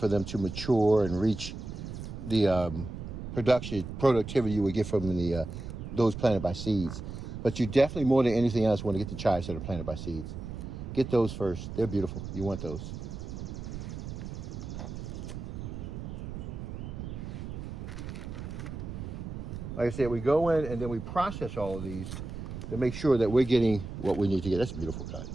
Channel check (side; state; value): right; noise; rumble, 8 dB below the sound